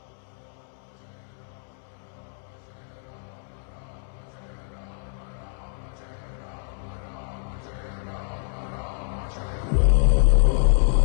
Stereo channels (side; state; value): right; silent; 61 dB below the other